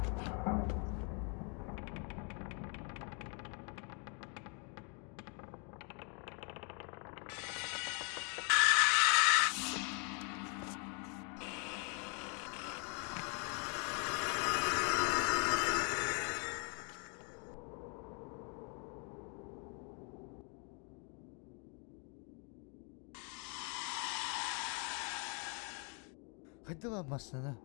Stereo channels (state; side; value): quieter; right; 36.7 dB